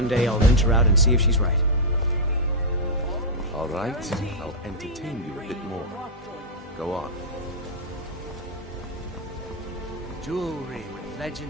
day I'll venture out and see if she's right. All right, I'll entertain you a bit more. Go on. Jewelry with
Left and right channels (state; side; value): normal; both; correlation -0.06